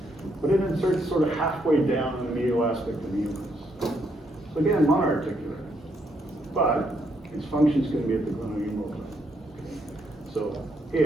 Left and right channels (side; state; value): both; normal; correlation 0.75